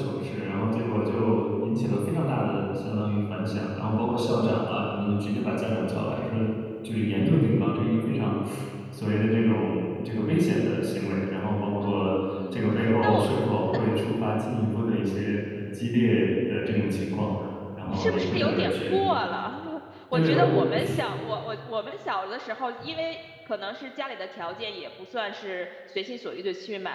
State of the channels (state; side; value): identical; both; correlation 1.00